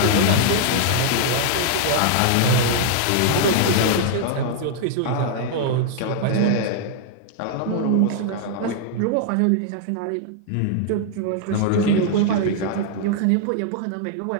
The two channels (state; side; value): different; both; correlation 0.00